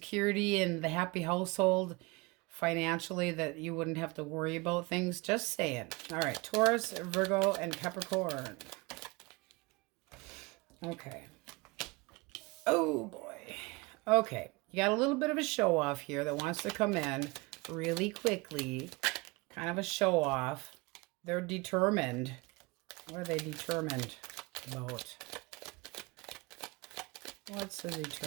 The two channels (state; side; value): quieter; left; 25.3 dB